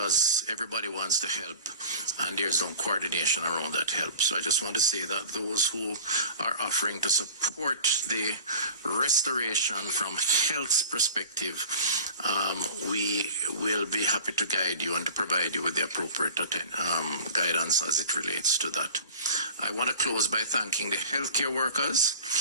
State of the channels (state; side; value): inverted; both; correlation -0.40